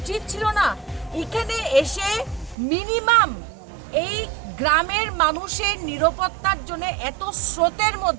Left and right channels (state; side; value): drops out; left; at 2.6 s